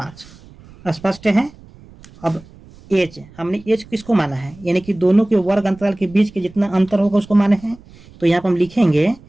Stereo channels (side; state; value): right; noise; rumble, 23 dB below the sound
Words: स्पष्ट है। अब एच, हमने एच किसको माना है, यानी कि दोनों के वर्ग अंतराल के बीच के जितना अंतर होगा उसको माने हैं। तो यहाँ पर हम लिखेंगे